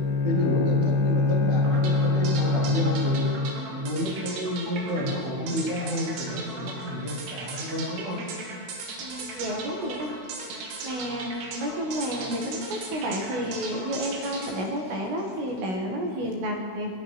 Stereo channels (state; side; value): late; left; 17 ms